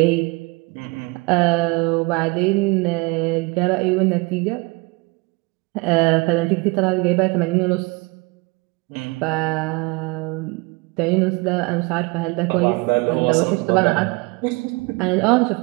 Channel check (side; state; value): left; quieter; 26.9 dB